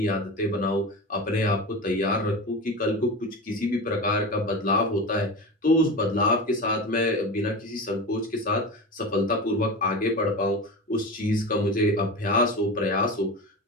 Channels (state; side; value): normal; both; correlation 0.27